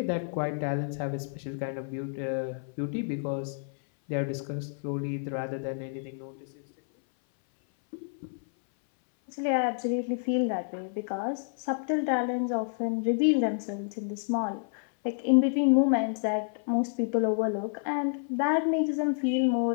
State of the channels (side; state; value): right; silent; 58 dB below the other